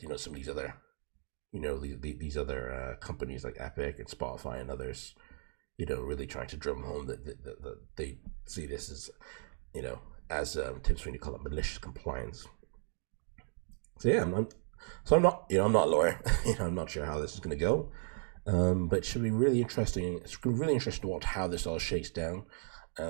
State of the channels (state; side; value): silent; left; 54 dB below the other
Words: some of these other, these other companies like Epic and Spotify and others, really trying to drum home that they see this as, you know, as Tim Sweeney called it, malicious compliance. So yeah, I'm not, I'm not a lawyer. I'm not sure how this is going to go, but it should be really interesting. It's really interesting to watch how this all shakes down,